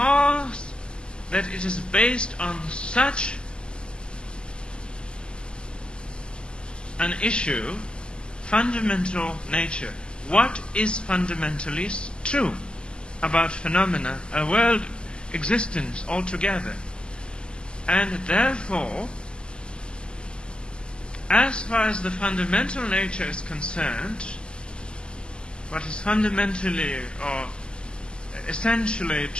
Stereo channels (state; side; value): late; right; 0.049 ms